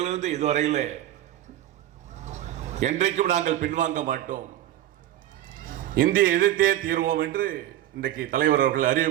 இதுவரையிலே என்றைக்கும் நாங்கள் பின்வாங்க மாட்டோம், இந்திய எதிர்த்தே தீர்வோம் என்று இன்றைக்கு தலைவர் அவர்கள்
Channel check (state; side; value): quieter; left; 13.0 dB